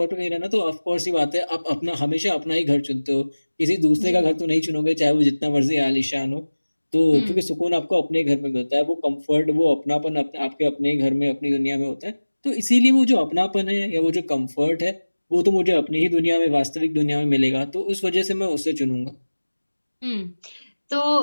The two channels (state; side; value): inverted; both; correlation -1.00